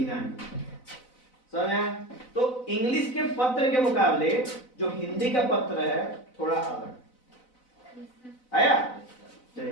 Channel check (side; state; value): right; late; 4.0 ms